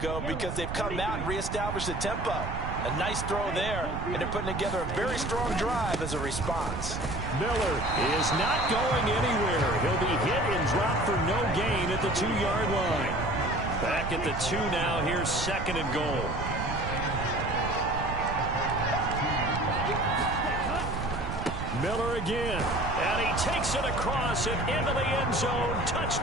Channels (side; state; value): right; noise; rumble, 5 dB below the sound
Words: because they've come out and reestablished the tempo. A nice throw there, and they're putting together a very strong drive as a response. Miller is not going anywhere. He'll be hit and dropped for no gain at the 2-yard line. Back at the 2 now. Here's 2nd and goal. Miller again. And he takes it across and into the end zone.